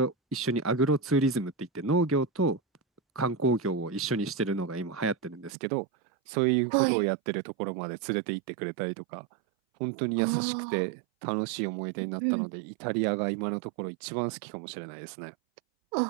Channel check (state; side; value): drops out; left; at 5.5 s